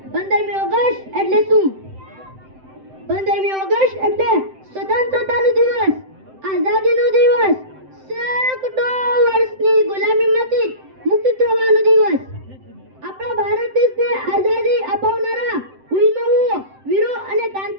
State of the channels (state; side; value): late; left; 7.8 ms